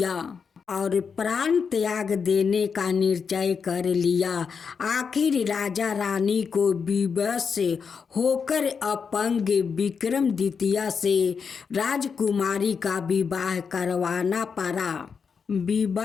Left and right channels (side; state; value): right; quieter; 6.0 dB